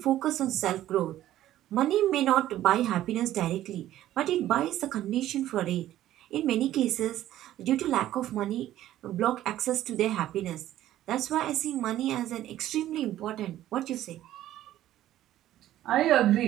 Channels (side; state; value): left; quieter; 13.3 dB